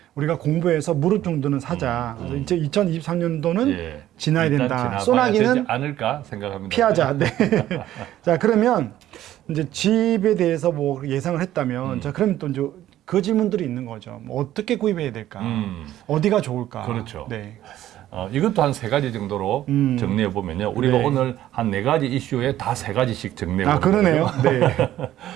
우리가 공부해서 무릎 정도는 사자. 그래서 이제 2023년도는 예. 지나야 일단 된다. 지나가야 소나기는 되지 않을까 생각합니다. 피하자. 네. 자, 그러면 이제 집에 대해서 뭐 예상을 했다면 자, 그러면 또 이제 그 질문들이 있는 거죠. 뭐 어떻게 구입해야 될까? 어디가 좋을까? 그렇죠. 네. 이것도 한 세 가지 정도로 정리해 보면요. 우리가 네. 오늘 한 네 가지 이슈에 다 세 가지씩 정리해 아, 보는 그러네요. 거예요.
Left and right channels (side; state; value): left; quieter; 13.1 dB